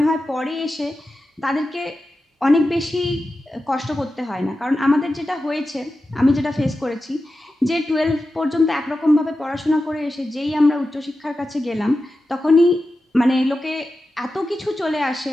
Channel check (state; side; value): normal; both; correlation 0.92